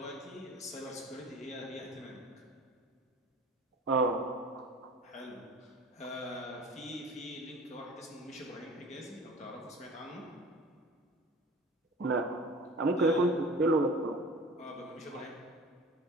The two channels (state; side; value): normal; both; correlation 0.42